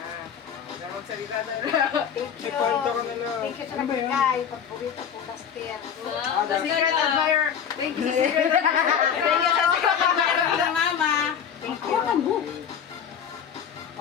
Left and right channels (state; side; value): quieter; right; 7.9 dB